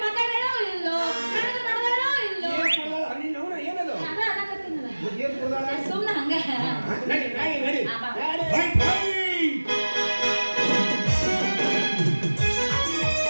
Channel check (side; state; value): both; inverted; correlation -1.00